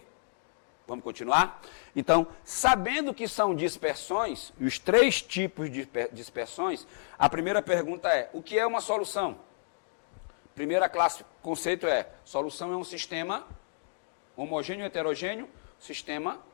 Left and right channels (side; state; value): right; silent; digital silence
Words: Vamos continuar? Então, sabendo que são dispersões, os 3 tipos de dispersões, a primeira pergunta é, o que é uma solução? Primeira classe, conceito é, solução é um sistema homogêneo, heterogêneo, sistema